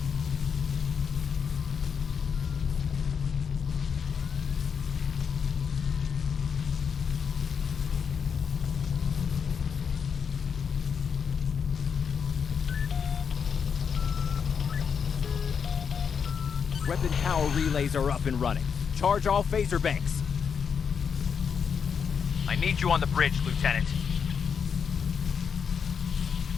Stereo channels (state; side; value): quieter; right; 6.7 dB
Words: Weapon power relays are up and running. Charge all phaser banks. I need you on the bridge, Lieutenant.